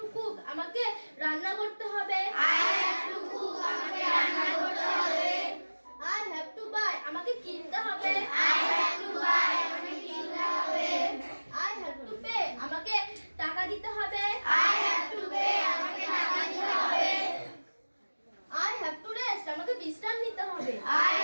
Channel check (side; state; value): both; inverted; correlation -1.00